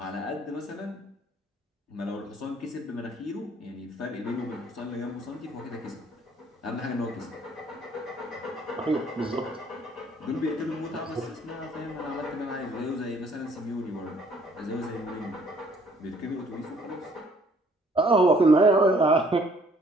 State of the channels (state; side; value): normal; both; correlation 0.61